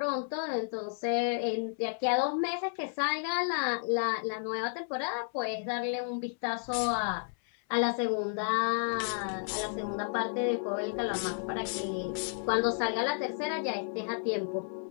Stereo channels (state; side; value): silent; right; 56 dB below the other